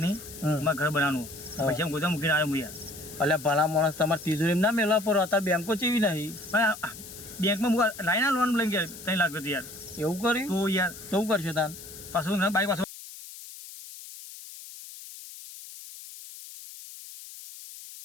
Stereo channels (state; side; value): noise; left; hiss, 14 dB below the sound